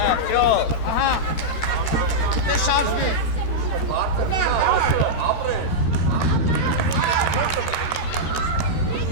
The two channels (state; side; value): late; right; 13 ms